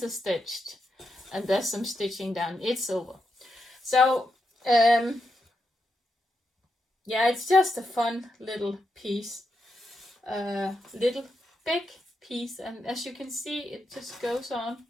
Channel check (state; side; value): normal; both; correlation 0.84